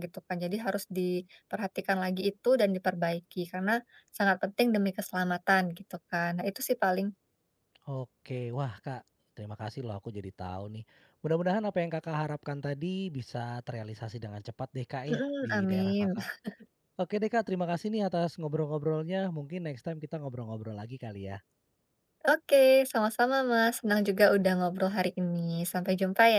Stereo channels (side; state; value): both; identical; correlation 1.00